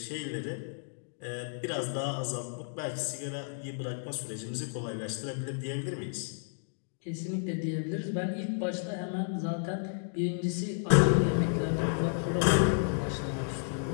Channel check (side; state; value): right; silent; digital silence